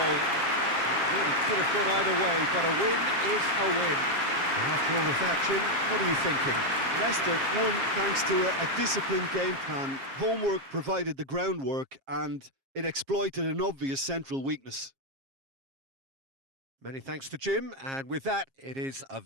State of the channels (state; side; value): late; left; 7.4 ms